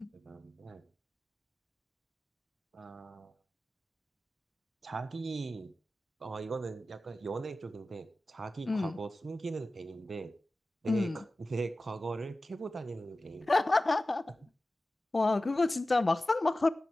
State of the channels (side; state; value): both; normal; correlation 0.95